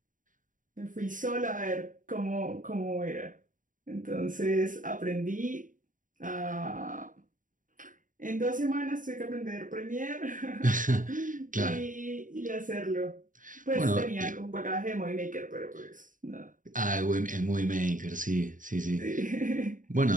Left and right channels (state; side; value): late; left; 0.38 ms